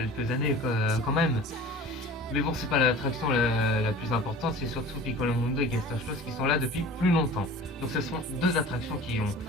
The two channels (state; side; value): normal; both; correlation 0.40